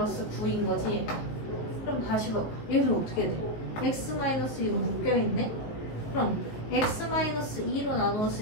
9인 거지 얘가. 그럼 다시 봐봐. 얘를 어떻게 돼? x-2로 묶여있네? 그럼 x-2로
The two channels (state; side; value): late; right; 18 ms